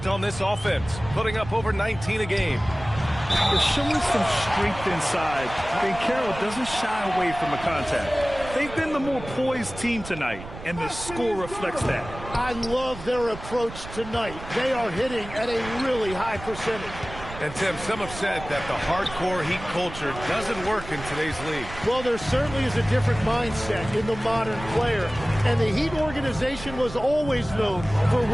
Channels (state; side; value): noise; right; rumble, 13 dB below the sound